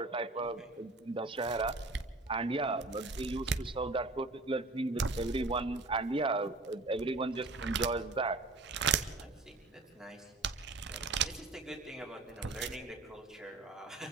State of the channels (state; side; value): quieter; left; 3.3 dB